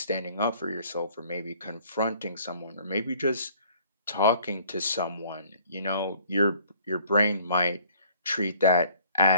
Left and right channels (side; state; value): both; inverted; correlation -0.57